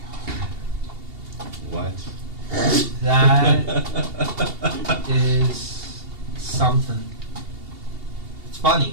What? That is something. It's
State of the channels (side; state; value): left; late; 2.8 ms